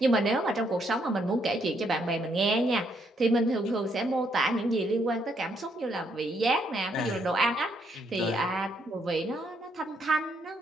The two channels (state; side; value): normal; both; correlation 0.73